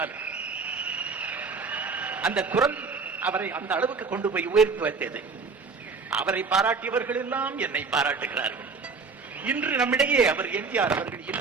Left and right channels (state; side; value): quieter; left; 4.7 dB